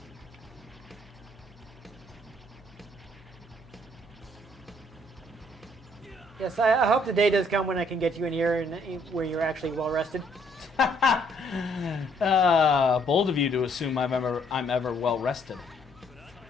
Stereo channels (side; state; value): both; normal; correlation 0.66